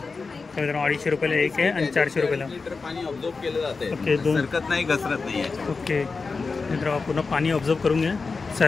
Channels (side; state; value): right; quieter; 4.4 dB